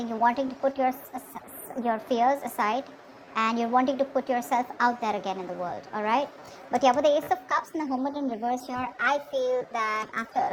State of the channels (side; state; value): both; identical; correlation 1.00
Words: you're wanting to put your fears aside, and you're wanting to put yourself out there again in the world. All right, but yeah, with the Ace of Cups and the Hermit in reverse here, I feel that after